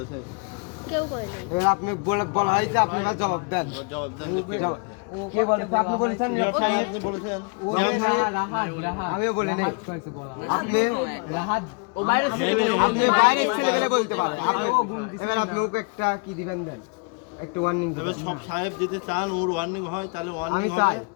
কেউ করে নাই। এবার আপনি বলা হয়েছে, আপনি এবার জবাব দেন। জবাব দেন যে কে বলেছে? কে বলেছে? আপনি বলেছেন। নিয়োগ সাহেব আপনি বলেছেন আমিও বলিনি। আপনি ও বাইরে আপনি বাইরের ছেলেবেলে বলতে পারেন। এবার আপনি ওকে একটা কি দিবেন দেন, একটু ওয়ার্নিং তবে দিবেন। সব সাহেব যদি চান ওর ওয়ার্নিং হয় তাহলে ওয়ার্নিং আমি হবে। চাই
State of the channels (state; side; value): quieter; right; 34.8 dB